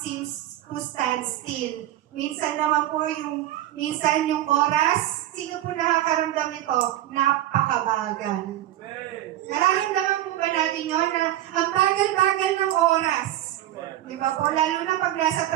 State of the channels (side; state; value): left; quieter; 13.5 dB